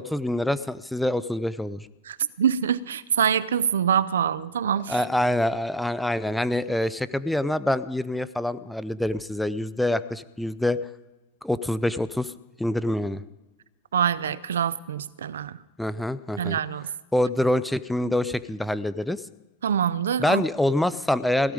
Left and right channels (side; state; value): both; normal; correlation 0.39